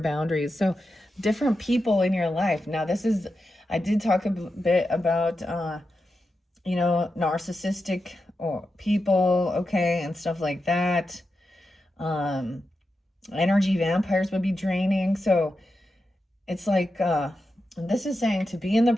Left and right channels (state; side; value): normal; both; correlation 0.89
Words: So different people in your life. Now this is, I did talk a bit about, narcissistic or people, okay, and stuff like that. Energy vampires would be draining. So it's like, this is saying to be in the